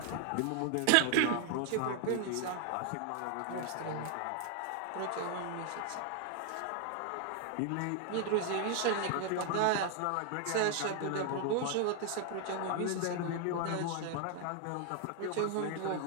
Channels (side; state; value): both; different; correlation 0.00